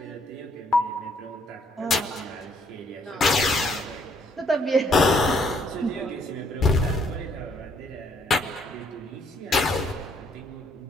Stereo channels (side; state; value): both; normal; correlation 0.68